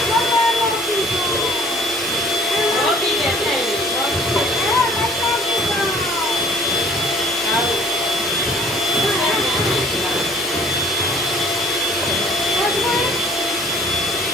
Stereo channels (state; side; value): normal; both; correlation 0.54